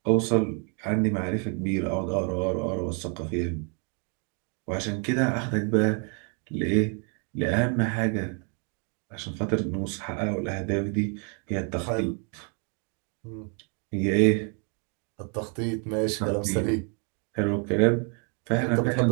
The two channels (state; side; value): quieter; left; 39.0 dB